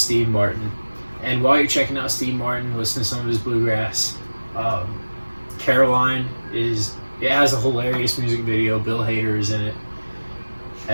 Martin. And while you're checking out Steve Martin, listen to some of his bluegrass. Caroline it has a hilarious music video. Bill Hader is in it.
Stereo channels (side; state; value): both; inverted; correlation -1.00